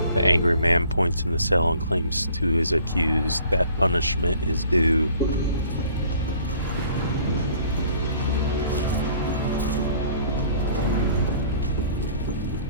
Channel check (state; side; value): inverted; both; correlation -0.55